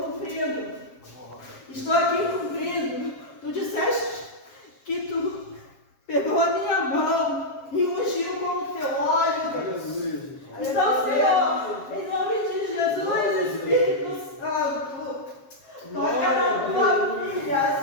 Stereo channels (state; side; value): late; right; 7.4 ms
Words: cumprindo. Estou aqui cumprindo. Tu disseste que tu pegou a minha mão e ungiu com o teu óleo, Deus. Então, Senhor, em nome de Jesus, Espírito Santo, toca na tua filha,